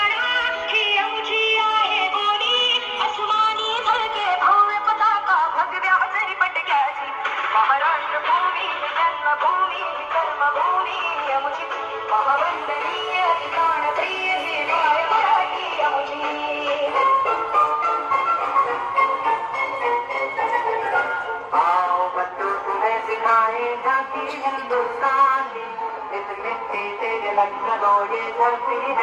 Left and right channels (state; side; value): identical; both; correlation 1.00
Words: ही आमची आहे बोली अस्मानी झळके भव्य पताका भगव्या जरी पटक्याची. महाराष्ट्र भूमी जन्मभूमी कर्मभूमी आमची महावंदनीय प्राणप्रिय ही माय मराठी आमची. आओ बच्चों तुम्हें सिखाएगा कि हिंदुस्तान की इस मिट्टी से लखनऊ ये धरती